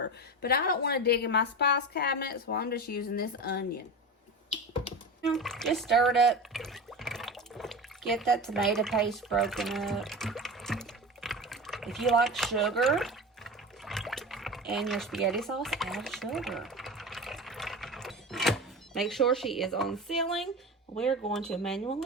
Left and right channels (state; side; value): normal; both; correlation 0.27